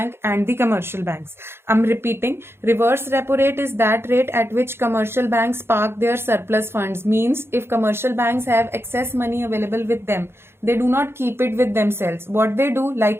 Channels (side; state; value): left; late; 0.12 ms